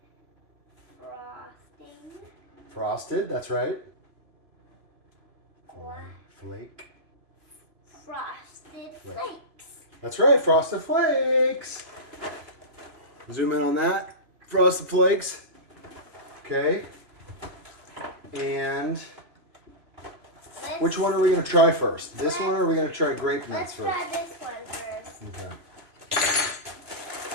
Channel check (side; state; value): left; late; 3.0 ms